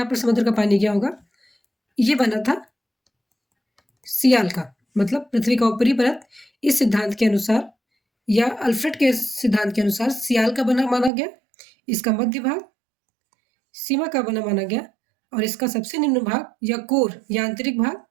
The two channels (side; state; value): left; drops out; at 11.1 s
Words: पर समुद्र का पानी गया होगा। ये बना था सियाल का, मतलब पृथ्वी का ऊपरी परत इस सिद्धांत के अनुसार या अल्फ्रेड के सिद्धांत के अनुसार सियाल का बना माना गया। इसका मध्य भाग सीमा का बना माना गया और इसका सबसे निम्न भाग या कोर या आंतरिक भाग